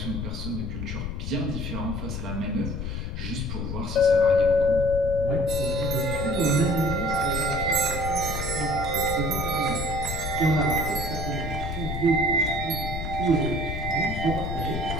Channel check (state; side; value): noise; left; rumble, 5 dB below the sound